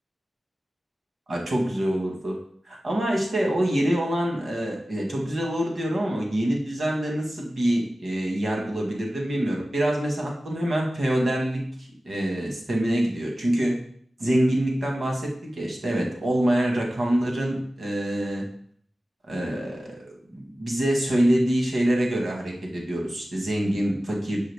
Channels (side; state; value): both; normal; correlation 0.95